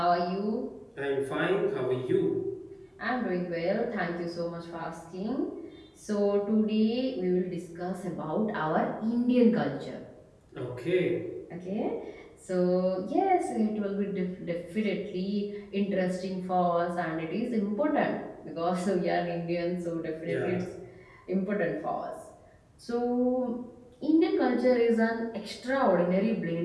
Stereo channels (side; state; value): both; identical; correlation 1.00